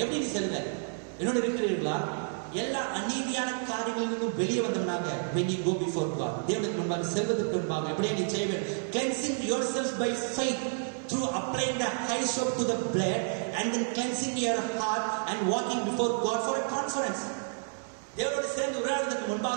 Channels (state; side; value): silent; left; digital silence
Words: எப்படி நீ செல்வ? என்னோட இருக்கிறீர்களா? எல்லா அநீதியான காரியங்களிலிருந்தும் வெளியே வந்தவனாக when you go before God, தேவனுக்கு முன்பாக செல்வதற்கு முன்பாக எப்படியே நீ செய்வேன்? Cleansing yourself by faith through through applying the hyssop to the blood and then cleansing your heart and walking before God for a conference. தேவனோடு சேர்ந்து உரையாடுவதற்கு